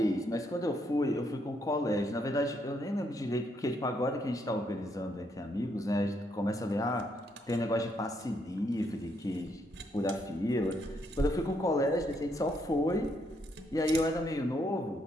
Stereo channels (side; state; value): both; normal; correlation 0.74